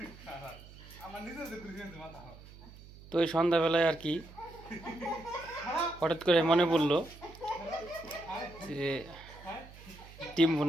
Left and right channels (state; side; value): noise; right; hum, 19 dB below the sound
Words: তো এই সন্ধ্যাবেলায় আর কি হঠাৎ করে মনে পড়লো যে ডিম